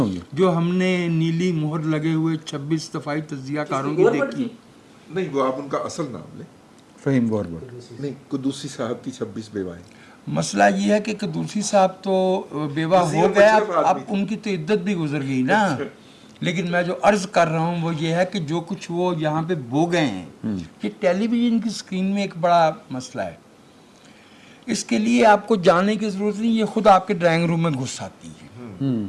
جو ہم نے نیلی مہر لگے ہوئے 26 دفاعی تجزیہ کاروں کی دیکھی. نہیں، وہ آپ ان کا اصل نام لیں. فہیم گوربٹ. نہیں، قدوسی صاحب کی 26 بیوائیں. مسئلہ یہ ہے کہ قدوسی صاحب تو بیوہ ہو گئے، اب ان کی تو عدت بھی گزر گئی نا. لیکن میں جو عرض کر رہا ہوں وہ یہ ہے کہ جو کچھ وہ یہاں پہ بو گئے ہیں، یہ ٹیلی ویژن کی اسکرین میں ایک بڑا مسئلہ ہے. اس کے لیے آپ کو جانے کی ضرورت نہیں، یہ خود آپ کے ڈرائنگ روم میں گھس آتی ہے.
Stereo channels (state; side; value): identical; both; correlation 1.00